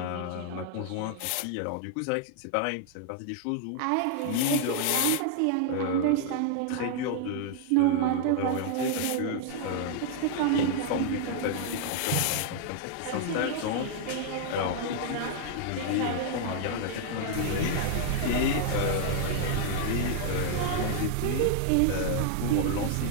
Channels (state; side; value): different; both; correlation -0.01